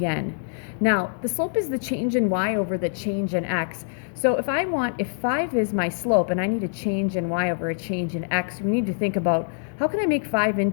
Now, the slope is the change in y over the change in x. So if 5 is my slope and I need a change in y over a change in x, we need to think about, how can I make 5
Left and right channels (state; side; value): silent; right; digital silence